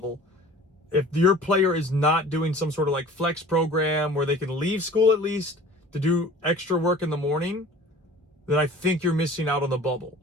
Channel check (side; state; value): both; normal; correlation 0.45